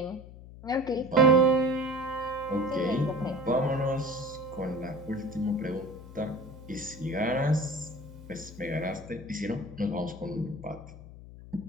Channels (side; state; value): left; noise; hum, 16 dB below the sound